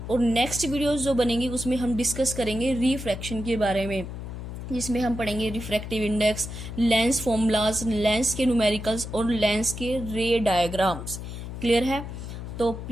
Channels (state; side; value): noise; left; hum, 8 dB below the sound